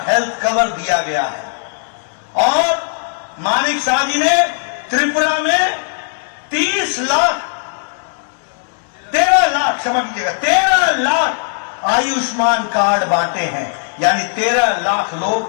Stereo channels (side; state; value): right; silent; digital silence